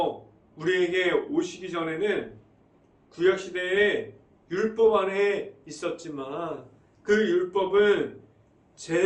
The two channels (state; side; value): identical; both; correlation 1.00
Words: 우리에게 오시기 전에는 구약시대에 율법 안에 있었지만 그 율법은